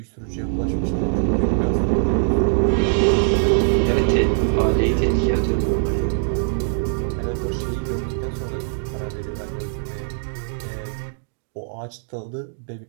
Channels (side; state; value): left; silent; digital silence